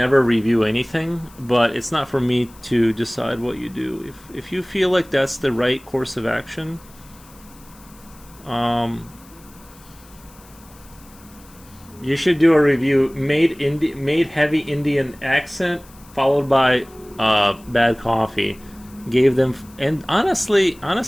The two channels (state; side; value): noise; left; hiss, 25 dB below the sound